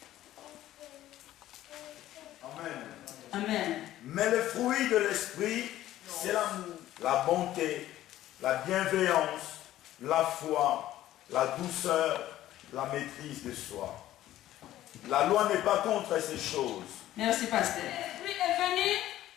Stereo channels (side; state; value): right; quieter; 13.8 dB